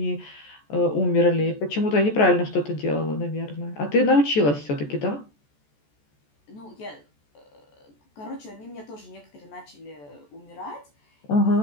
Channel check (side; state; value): right; late; 14 ms